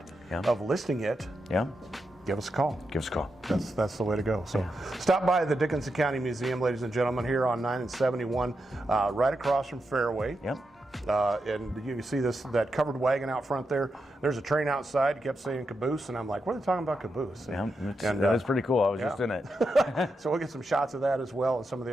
of listing it, give us a call. Give us a call. That's the way to go. So stop by the Dickinson County Museum, ladies and gentlemen, here on 9 and 71, right across from Fairway. And you can see that covered wagon out front there. There's a train outside. It kept saying caboose, and I'm like, what are they talking about caboose? That is pretty cool. I was just in it. So we'll get some shots of that as well, and some of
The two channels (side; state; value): both; normal; correlation 0.86